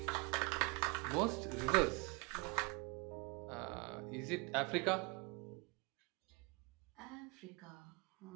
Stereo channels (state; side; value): quieter; left; 28.4 dB